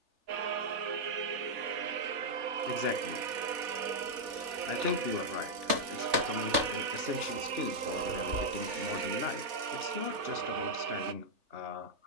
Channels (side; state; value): left; late; 3.4 ms